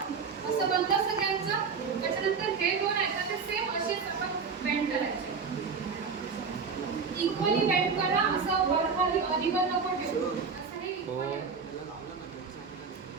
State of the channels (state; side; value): quieter; left; 5.5 dB